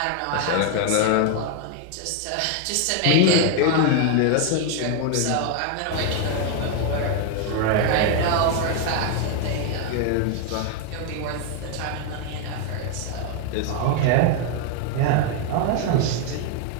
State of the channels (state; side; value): different; both; correlation 0.01